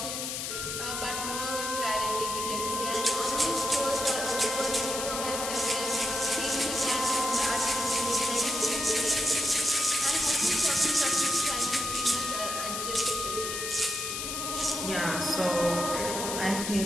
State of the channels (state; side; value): noise; left; hiss, 4 dB below the sound